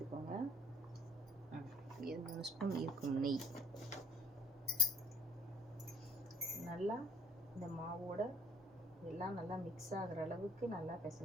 3 ஸ்பூன் இருக்கும் நெய் நல்லா இந்த மாவோட எல்லாம் நல்லா மிக்ஸ் ஆகிற அளவுக்கு நல்லா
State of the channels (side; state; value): both; normal; correlation 0.56